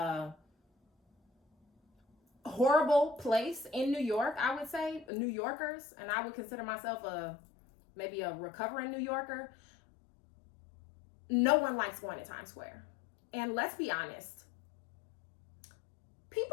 horrible place in New York, I would say. New Yorkers, and I would consider myself maybe a recovering New Yorker. No one likes going to Times Square. And let's be honest,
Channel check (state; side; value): drops out; right; at 5.1 s